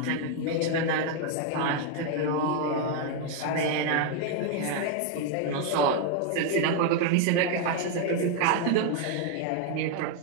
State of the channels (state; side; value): different; both; correlation 0.01